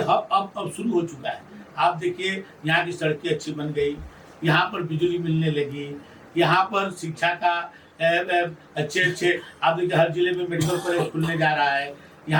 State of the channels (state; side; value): identical; both; correlation 1.00